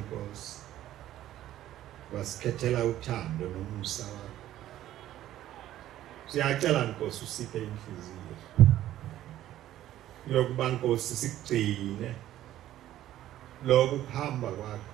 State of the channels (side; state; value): left; quieter; 13.2 dB